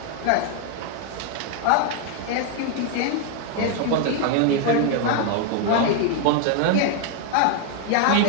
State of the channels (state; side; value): different; both; correlation 0.01